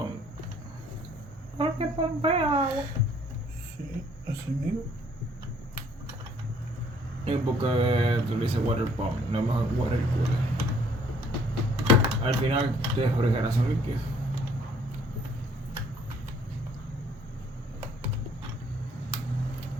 Porque pompea agua. Sí, así mismo. Y porque tú le dices water pump, no es mejor water cooler. Al final, de refrigeración líquida.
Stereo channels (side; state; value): both; normal; correlation 0.61